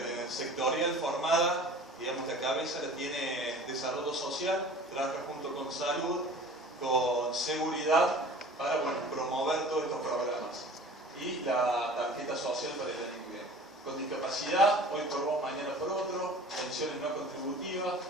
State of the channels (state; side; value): normal; both; correlation 0.43